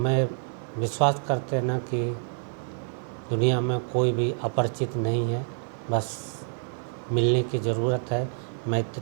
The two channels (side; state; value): left; silent; 58 dB below the other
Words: विश्वास करते ना कि दुनिया में कोई भी अपरिचित नहीं है, बस मिलने की ज़रूरत है,